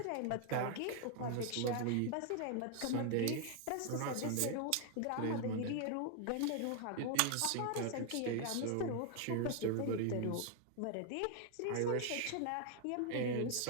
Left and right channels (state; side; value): different; both; correlation 0.00